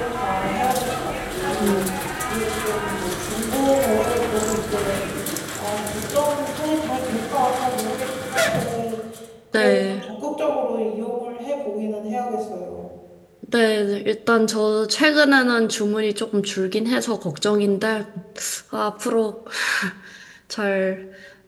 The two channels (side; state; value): both; identical; correlation 1.00